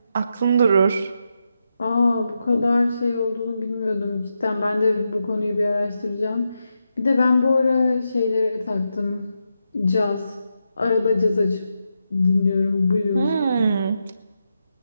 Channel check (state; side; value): inverted; both; correlation -0.86